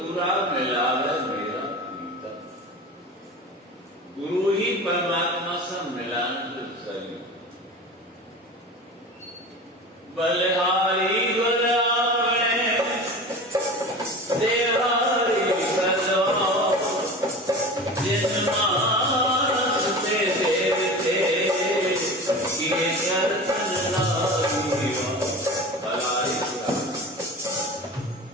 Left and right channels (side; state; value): both; normal; correlation 0.34